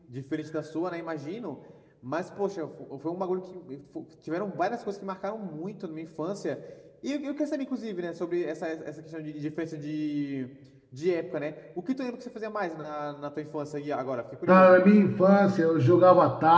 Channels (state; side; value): identical; both; correlation 1.00